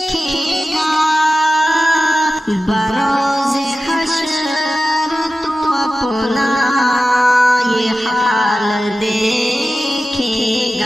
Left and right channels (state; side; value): normal; both; correlation 0.93